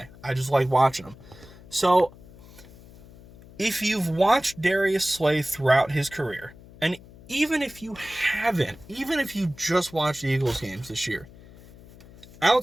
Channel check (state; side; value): noise; left; hum, 21 dB below the sound